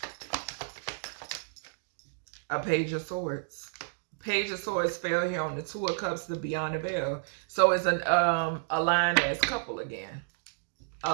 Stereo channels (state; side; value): silent; left; digital silence